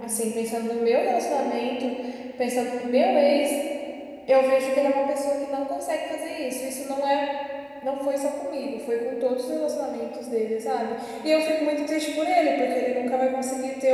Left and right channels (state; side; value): identical; both; correlation 1.00